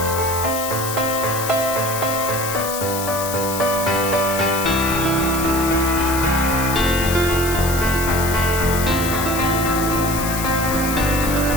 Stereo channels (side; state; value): left; noise; hiss, 6 dB below the sound